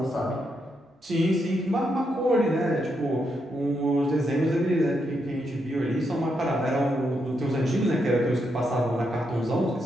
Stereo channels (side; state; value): both; normal; correlation 0.81